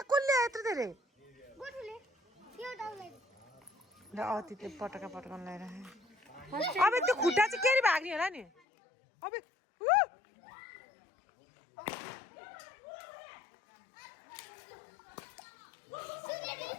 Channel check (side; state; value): right; drops out; at 8.5 s